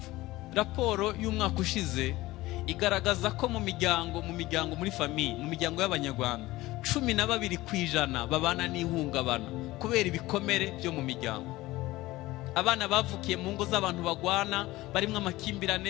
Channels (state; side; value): quieter; right; 18.5 dB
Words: Raporo y'umwaka ushize igaragaza ko mu miryango muri famiye, mu miryango y'Abanyarwanda 12% babana n'ihungabana kubera ibikomere byo mu miryango. Abana bavukiye mu ngo z'abantu bagwana, barimwe